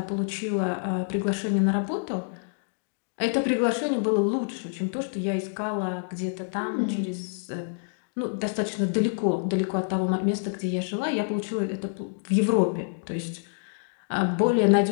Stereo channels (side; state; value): right; silent; digital silence